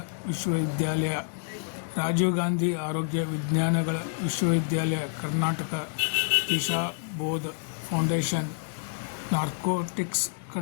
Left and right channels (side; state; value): right; silent; digital silence